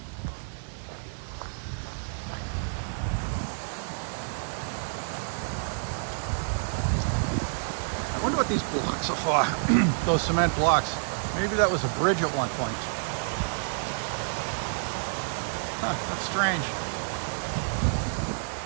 I wonder what these blocks are for. Those cement blocks. Maybe that was a bridge at one point. Huh, that's strange.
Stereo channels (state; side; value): silent; left; digital silence